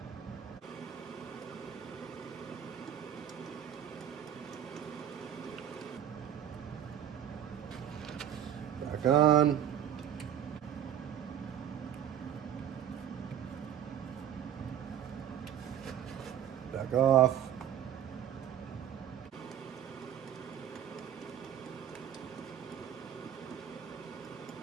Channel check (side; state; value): left; quieter; 9.8 dB